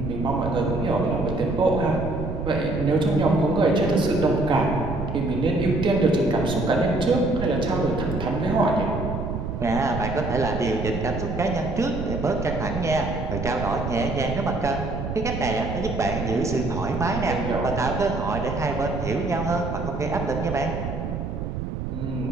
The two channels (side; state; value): right; noise; rumble, 5 dB below the sound